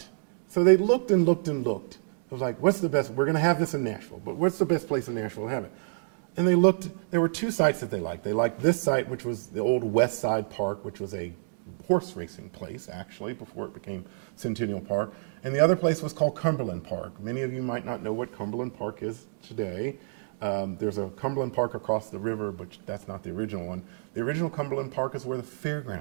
So they looked and looked and looked. It was like, what's the best? We're going to have this in Nashville, but what's the best place in Nashville to have it? And they looked, there were two sites that they liked. They liked this site, which was the old West Side Park, which was a horse racing place, actually, before it became Centennial Park. And the other place was called Cumberland Park. Many of you might not know what Cumberland Park is today. There's a Cumberland Park across the river, but that's not the original one. The original Cumberland Park is where the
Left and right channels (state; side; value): silent; left; digital silence